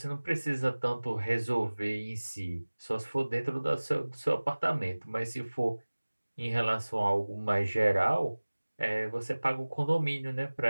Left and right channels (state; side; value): inverted; both; correlation -1.00